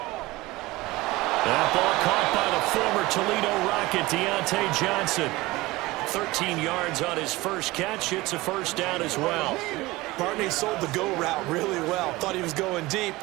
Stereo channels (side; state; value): left; quieter; 20.3 dB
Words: That ball caught by the former Toledo Rocket, Deontay Johnson. 13 yards on his first catch. It's a 1st down as well. Barney sold the go route really well. Thought he was going deep,